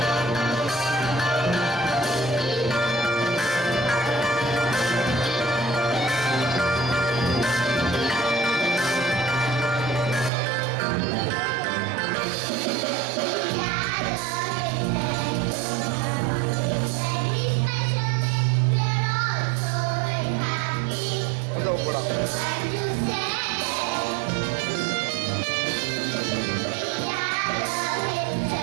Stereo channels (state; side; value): drops out; left; at 10.3 s